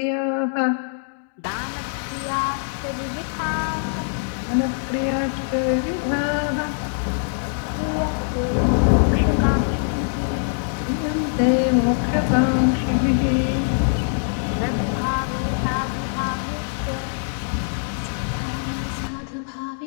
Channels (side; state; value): right; silent; digital silence